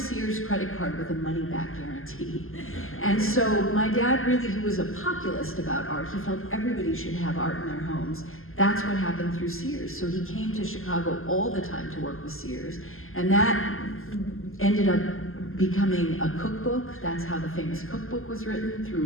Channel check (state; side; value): late; right; 0.61 ms